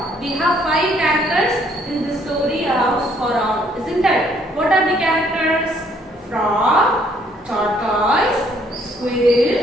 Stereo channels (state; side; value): normal; both; correlation 0.65